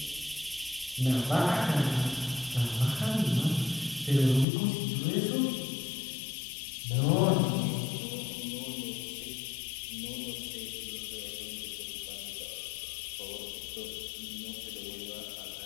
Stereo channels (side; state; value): right; drops out; at 4.5 s